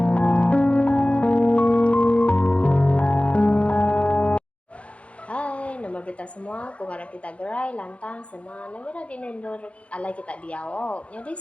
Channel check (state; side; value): late; right; 0.062 ms